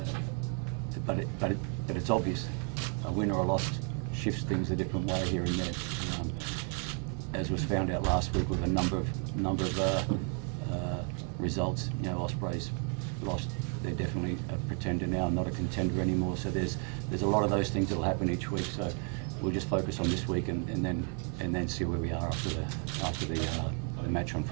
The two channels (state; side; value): quieter; left; 37.8 dB